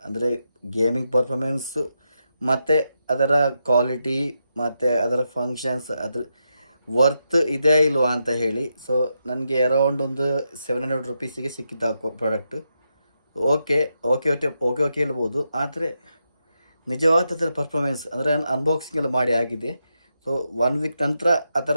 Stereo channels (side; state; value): both; inverted; correlation -0.84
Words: ಅಂದರೆ ಗೇಮಿಂಗ್ ಪರ್ಫಾರ್ಮೆನ್ಸು ಮತ್ತು ಅದರ ಕ್ವಾಲಿಟಿ ಮತ್ತು ಅದರ ಫಂಕ್ಷನ್ಸ್, ಅದ್ರ ವರ್ತ್ ಇದೆ ಇಲ್ವಾ ಅಂತ ಹೇಳಿ. ಸೊ ನನಗೆ ಅರೌಂಡ್ ಒಂದು 700 ರುಪೀಸಿಗೆ ಸಿಕ್ಕಿತ್ತು product. Okay okay okay okay okay ಹೇಳ್ಬೋದು, ಆದರೆ ನಿಜವಾದ ಅದರ ಪರ್ಫಾರ್ಮೆನ್ಸ್ ಅಂದರೆ ಅನ್ಬಾಕ್ಸಿಂಗ್ ಎಲ್ಲ ಮಾಡಿ ಆಗಿದೆ. ಸೊ 1 ವೀಕ್ ನಂತರ